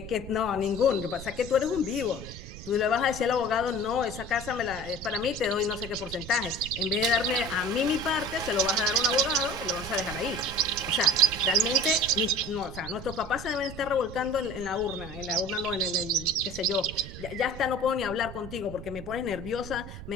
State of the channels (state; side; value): noise; right; rumble, 12 dB below the sound